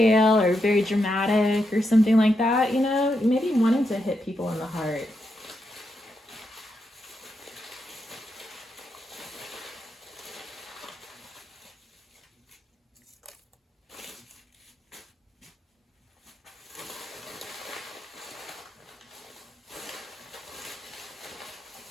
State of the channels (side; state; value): both; normal; correlation 0.83